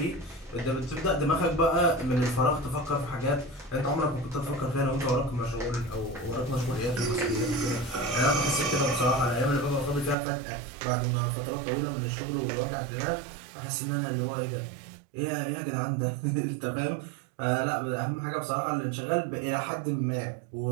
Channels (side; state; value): left; drops out; at 10.2 s